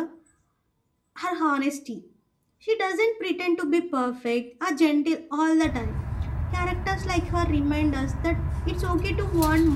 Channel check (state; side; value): identical; both; correlation 1.00